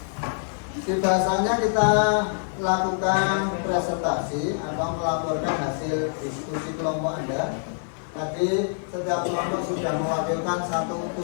Di bahasanya kita lakukan presentasi atau melaporkan hasil diskusi kelompok Anda. Tadi setiap kelompok sudah mewakilkan satu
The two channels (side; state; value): right; silent; digital silence